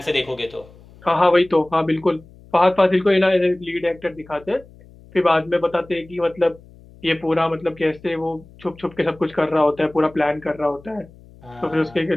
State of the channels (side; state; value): left; noise; hum, 24 dB below the sound